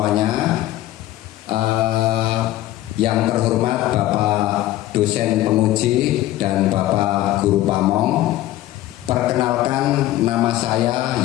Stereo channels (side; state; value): right; quieter; 15.0 dB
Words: Yang terhormat Bapak dosen penguji dan Bapak guru pamong, perkenalkan nama saya